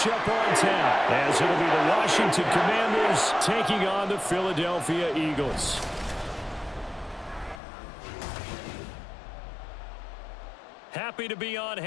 on tap, as it'll be the Washington Commanders taking on the Philadelphia Eagles. Happy to be on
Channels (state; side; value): drops out; right; at 7.6 s